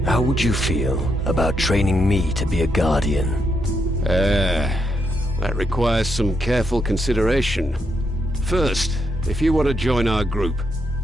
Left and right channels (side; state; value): both; normal; correlation 0.79